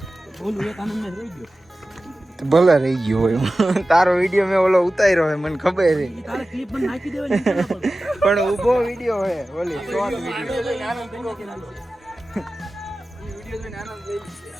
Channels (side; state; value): both; normal; correlation 0.95